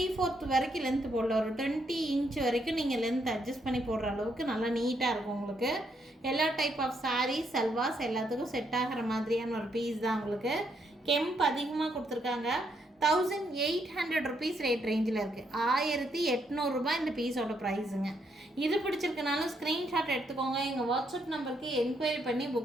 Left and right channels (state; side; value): normal; both; correlation 0.75